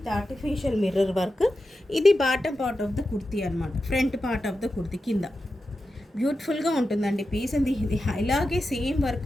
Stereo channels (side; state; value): both; normal; correlation 0.91